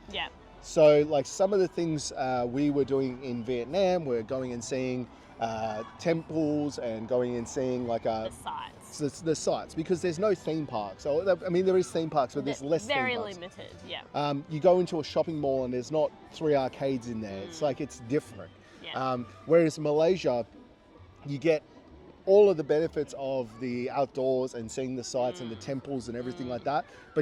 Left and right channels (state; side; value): identical; both; correlation 1.00